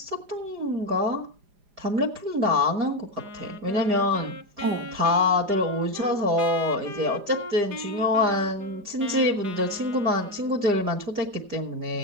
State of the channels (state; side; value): late; left; 4.9 ms